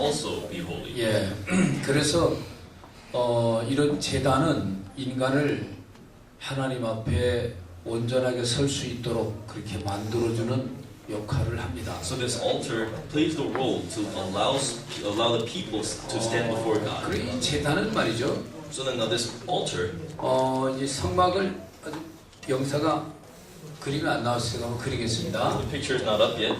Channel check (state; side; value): identical; both; correlation 1.00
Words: be holy. 예, 그래서 이런 제단은 인간을 하나님 앞에 온전하게 설 수 있도록 그렇게 만들어주는 역할을 합니다. So this altar plays the role to allow the people to stand before God. 그리고 이 제단은 말이죠. So then now this altar, 이 성막을 아주 영사가 그림이 안 나왔으니까 한번 그리겠습니다. the picture is not up yet.